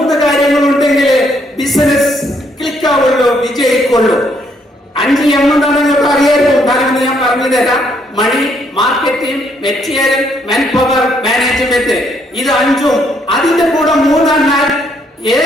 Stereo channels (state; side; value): normal; both; correlation 0.71